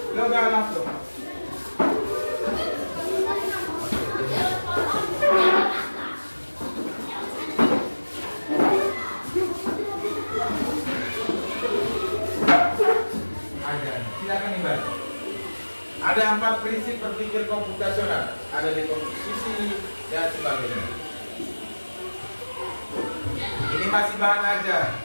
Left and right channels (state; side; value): inverted; both; correlation -1.00